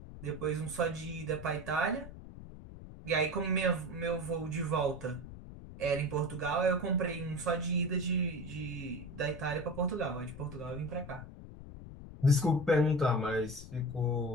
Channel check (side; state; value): left; noise; rumble, 13 dB below the sound